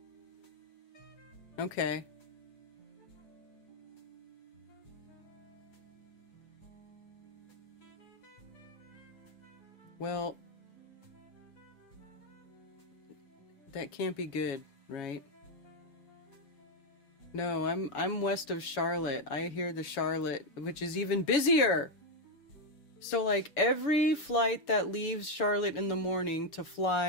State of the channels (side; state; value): right; late; 7.2 ms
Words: Okay. Well, that can't be good, right? No, I'm west of Charlotte. I hear the Charlotte, which is even busier. So like every flight that leaves Charlotte in the morning to